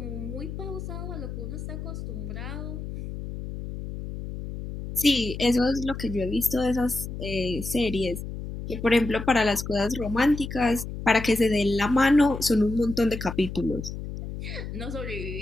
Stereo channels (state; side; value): noise; left; hum, 8 dB below the sound